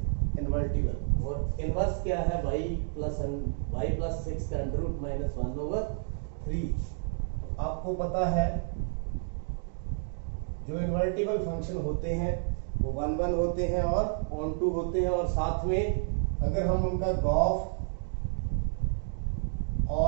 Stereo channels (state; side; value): silent; left; digital silence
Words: invertible और इनवर्स क्या है y प्लस 6 का अंडर रूट -1/3। आपको पता है जो इन्वर्टिबल फंक्शन होते हैं वो 1 1 होते हैं और ऑन टू होते हैं, और साथ में अगर हम उनका गॉफ